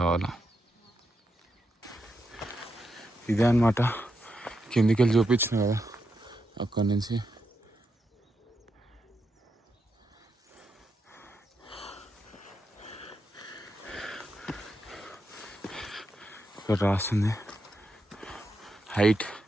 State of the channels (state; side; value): normal; both; correlation 0.84